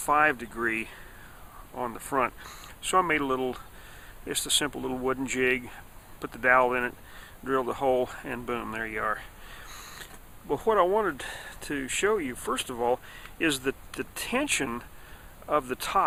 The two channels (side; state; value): both; identical; correlation 1.00